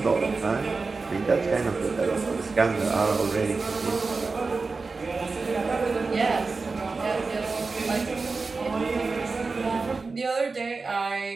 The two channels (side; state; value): left; quieter; 4.1 dB